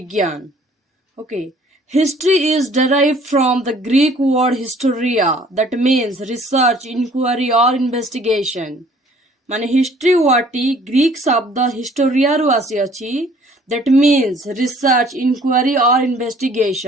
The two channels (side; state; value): both; normal; correlation 0.56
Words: Okay. History is derived from the Greek word historia that means research, inquiry or investigation. ମାନେ ହିଷ୍ଟ୍ରି ୱାର୍ଡଟି ଗ୍ରୀକ୍ ଶବ୍ଦ ହିଷ୍ଟୋରିଆରୁ ଆସିଅଛି that means research, inquiry or